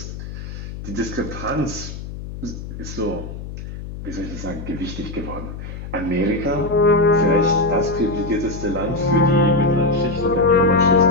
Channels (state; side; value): noise; left; hum, 10 dB below the sound